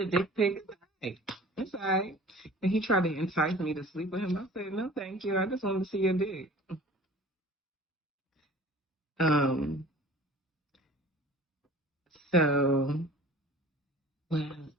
dick pic. It's all right. And he tried to entice me to sleep with him. I said, no, thank you. I just wanted to see your dick. So, well,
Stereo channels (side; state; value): both; normal; correlation 0.45